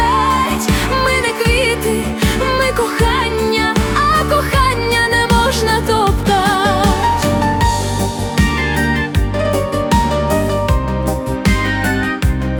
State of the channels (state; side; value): identical; both; correlation 1.00